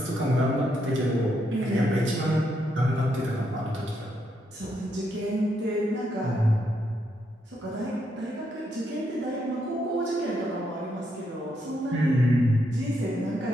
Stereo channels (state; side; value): normal; both; correlation 0.78